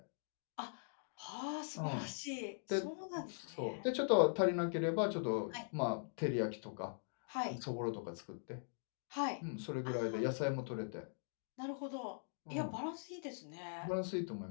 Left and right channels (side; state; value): right; silent; digital silence